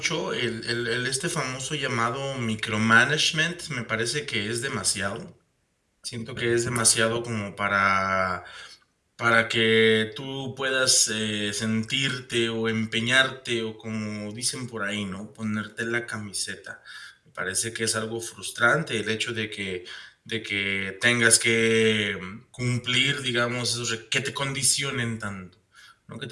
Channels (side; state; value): both; identical; correlation 1.00